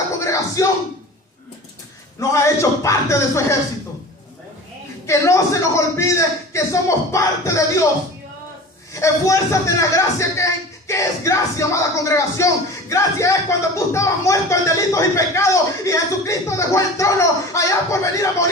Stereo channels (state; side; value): normal; both; correlation 0.37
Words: congregación, nos ha hecho parte de su ejército. Que no se nos olvide que somos parte de Dios. Esfuérzate en la gracia ¿Qué es gracia, amada congregación? Gracia es cuando tú estabas muerto en delitos y pecados y Jesucristo dejó el trono allá por venir a